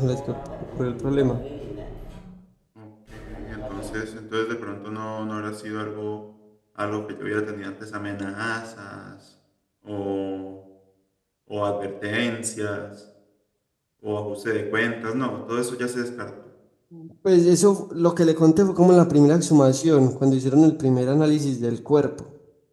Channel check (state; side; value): identical; both; correlation 1.00